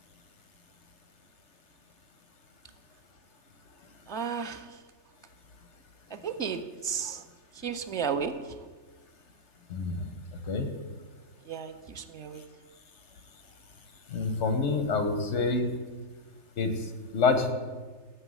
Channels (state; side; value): late; right; 3.3 ms